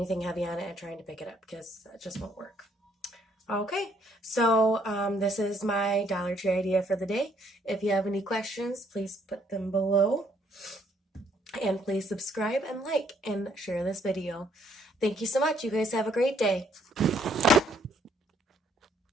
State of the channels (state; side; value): normal; both; correlation 0.67